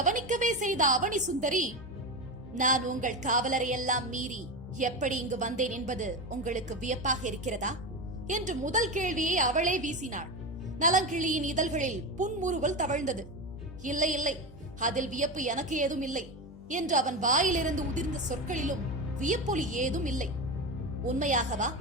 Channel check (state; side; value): normal; both; correlation 0.19